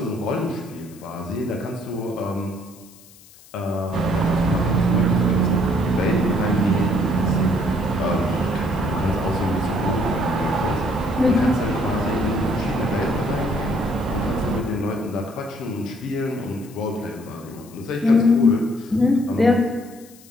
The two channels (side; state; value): left; noise; hiss, 23 dB below the sound